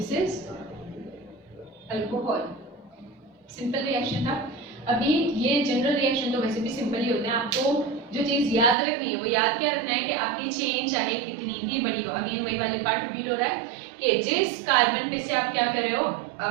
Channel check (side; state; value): left; drops out; at 8.8 s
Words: is alcohol. Simple reaction था। अभी ये जनरल रिएक्शन तो वैसे भी सिंपल ही होते हैं, आपको जो चीज़ याद रखनी है वो याद क्या रखना है कि आपकी चेन चाहे कितनी भी बड़ी हो, अगेन वही वाले पार्ट रिपीट हो रहा है कि जिस कार्बन पे से आप क्या कर रहे हो,